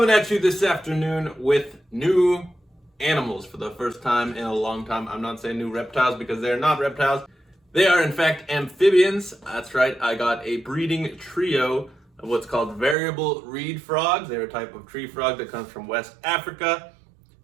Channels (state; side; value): drops out; left; at 13.0 s